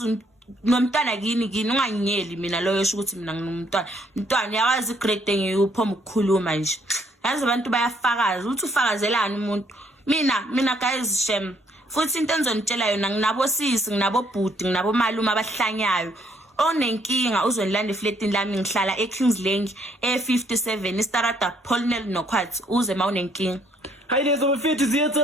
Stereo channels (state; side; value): normal; both; correlation 0.68